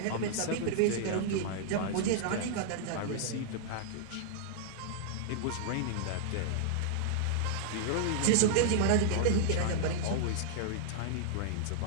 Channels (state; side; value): different; both; correlation -0.01